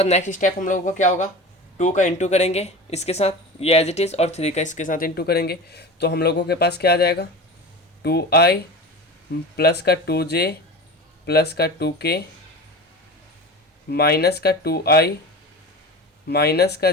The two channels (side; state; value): both; normal; correlation 0.31